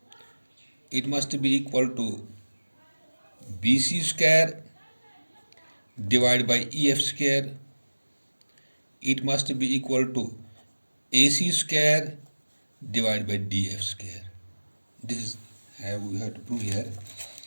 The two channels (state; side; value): inverted; both; correlation -1.00